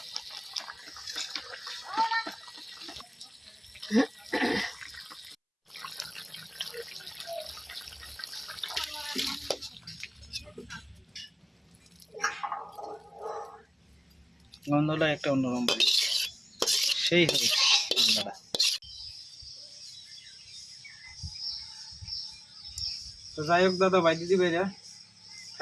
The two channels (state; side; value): identical; both; correlation 1.00